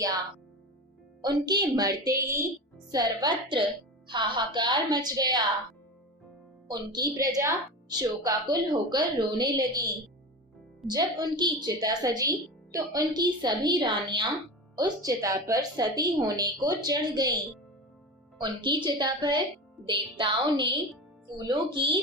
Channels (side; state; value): both; normal; correlation 0.27